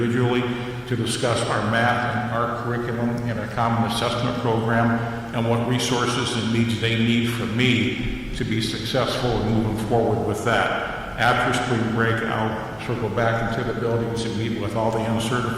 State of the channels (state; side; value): identical; both; correlation 1.00